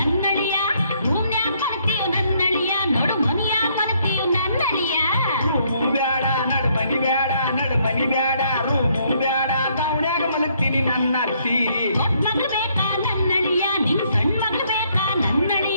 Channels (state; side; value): inverted; both; correlation -0.69